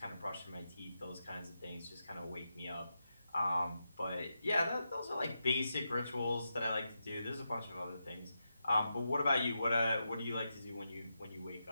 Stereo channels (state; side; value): inverted; both; correlation -0.87